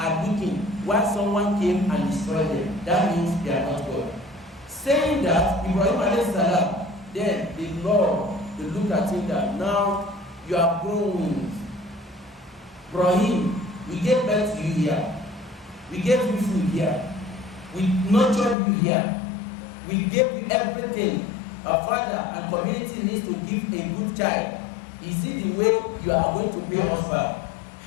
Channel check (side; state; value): right; drops out; at 18.6 s